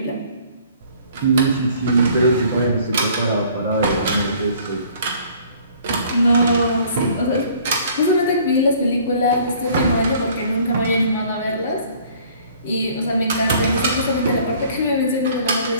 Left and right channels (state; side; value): inverted; both; correlation -0.55